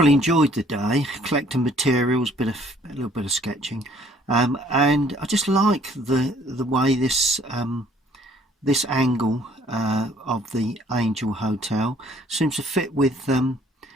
enjoyed the day, collecting materials, a little bit of sketching, and I just like the way this angle of the Angel Hotel seems to fit with the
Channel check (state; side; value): normal; both; correlation 0.60